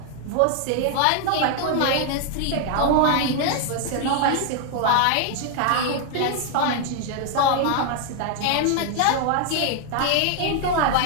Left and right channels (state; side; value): different; both; correlation 0.00